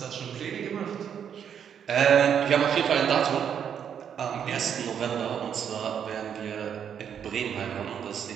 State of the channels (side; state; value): left; quieter; 8.3 dB